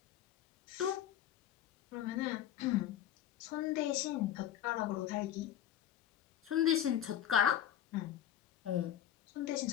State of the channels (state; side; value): quieter; right; 11.0 dB